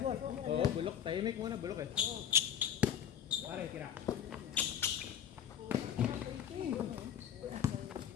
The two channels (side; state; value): right; quieter; 9.2 dB